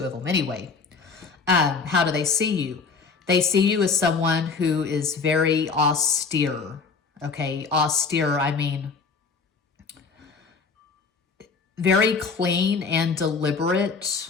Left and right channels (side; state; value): right; quieter; 4.9 dB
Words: of them anyway. How do they see you? They see you as someone who is very austere. Okay, austere, I mean very clean and deliberate,